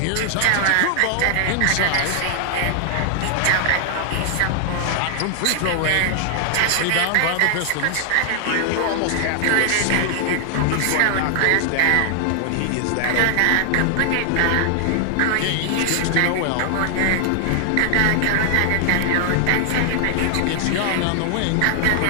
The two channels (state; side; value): different; both; correlation 0.00